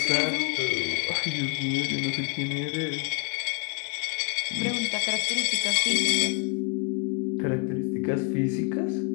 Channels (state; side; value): quieter; right; 33.3 dB